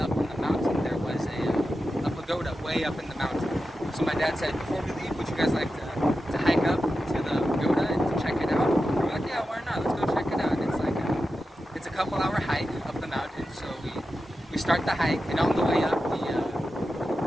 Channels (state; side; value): normal; both; correlation 0.91